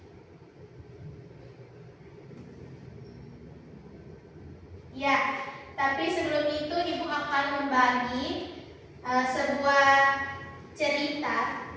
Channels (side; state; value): both; identical; correlation 1.00